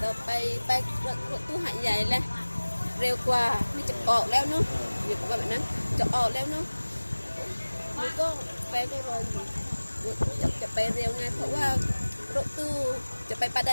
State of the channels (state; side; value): inverted; both; correlation -1.00